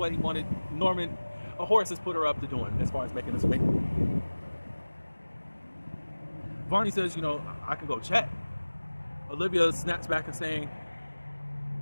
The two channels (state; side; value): inverted; both; correlation -1.00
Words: he wanted. Norman, a horse has put her up to doing as far as making this wait. Barney says, I can go check. Olivia snaps back and saying,